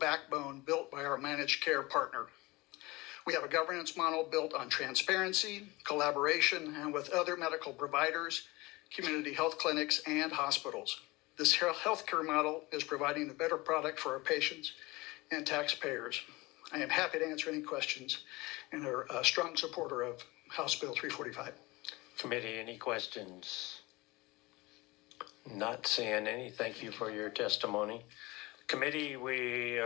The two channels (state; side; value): quieter; right; 22.4 dB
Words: built by our managed care partner. We have a governance model built on transparency, collaboration, and with other medical providers, community health clinics, and hospitals. This healthcare model is providing a better product for our patients and taxpayers. I am happy to answer any questions and are a strong supporter of House Bill 345. Committee, any questions? Not seeing any. Thank you for your testimony. Committee, we